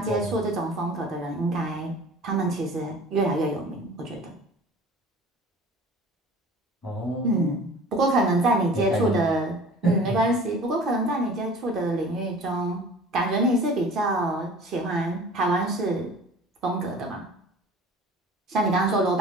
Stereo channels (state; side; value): normal; both; correlation 0.44